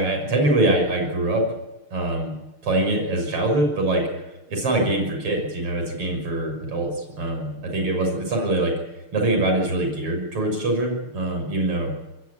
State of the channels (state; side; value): late; left; 6.6 ms